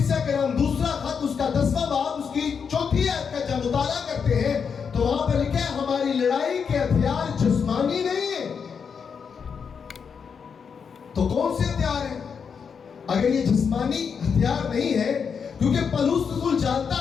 کے نام دوسرا خط، اس کا 10واں باب، اس کی 4 آیت کا جب مطالعہ کرتے ہیں تو وہاں پر لکھا ہے ہماری لڑائی کے ہتھیار جسمانی نہیں ہیں۔ تو کون سے ہتھیار ہیں؟ اگر یہ جسمانی ہتھیار نہیں ہے، کیونکہ پولس رسول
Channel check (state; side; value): quieter; right; 6.4 dB